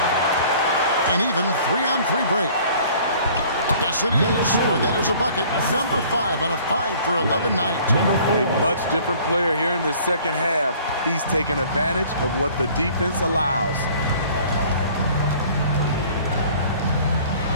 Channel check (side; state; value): both; inverted; correlation -0.52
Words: An even 3-on-3 break. Yes, it is. Or that is a bucket. Number 5 on a 5-for-11 night. A much different player here in the second half. He's taking advantage of what the defense allows.